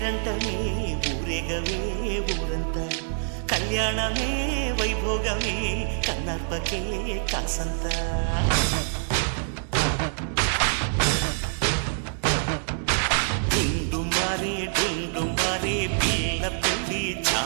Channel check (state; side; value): silent; left; digital silence